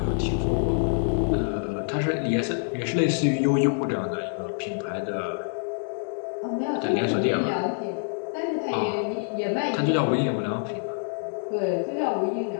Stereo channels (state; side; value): silent; right; digital silence